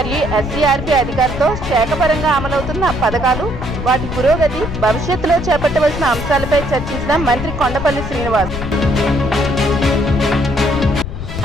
ఎస్సీఆర్పీ అధికారులతో శాఖపరంగా అమలవుతున్న పథకాలు, వాటి పురోగతి, భవిష్యత్తులో చేపట్టవలసిన అంశాలపై చర్చించిన మంత్రి Kondapalli Srinivas.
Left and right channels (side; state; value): left; noise; rumble, 7 dB below the sound